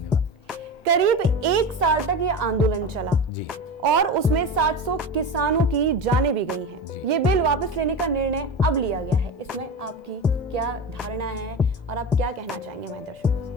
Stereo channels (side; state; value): both; normal; correlation 0.25